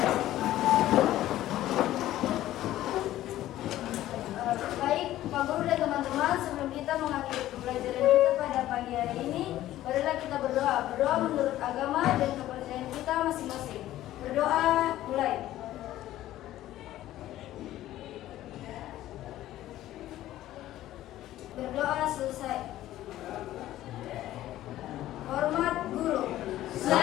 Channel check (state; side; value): quieter; right; 14.2 dB